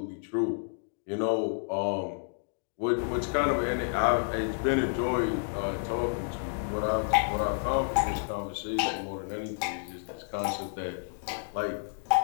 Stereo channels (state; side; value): silent; right; digital silence